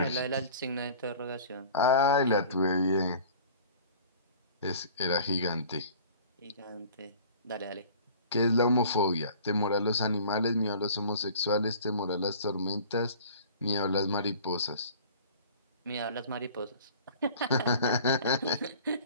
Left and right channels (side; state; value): both; inverted; correlation -0.46